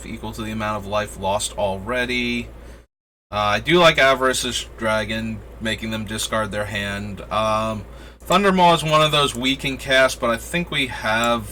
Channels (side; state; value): both; identical; correlation 1.00